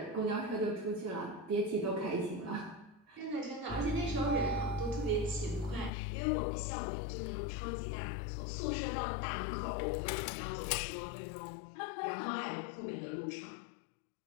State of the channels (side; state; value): right; drops out; at 5.9 s